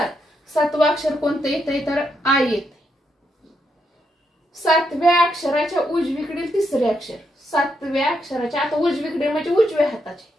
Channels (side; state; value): both; normal; correlation 0.80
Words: 7वं अक्षर कोणतं येते, तर आय येते. 7व्या अक्षराच्या उजवीकडील तिसरे अक्षर, 7व्या अक्षराच्या आता उजवीकडे म्हणजे उजव्या हाताचे